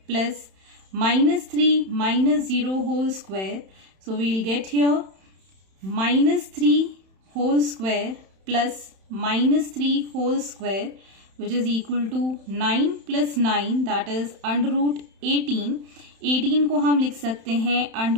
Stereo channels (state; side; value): late; left; 31 ms